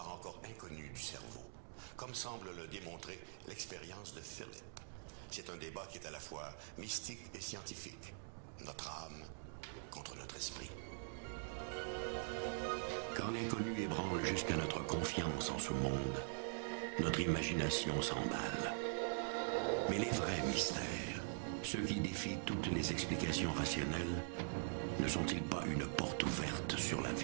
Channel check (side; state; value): left; silent; digital silence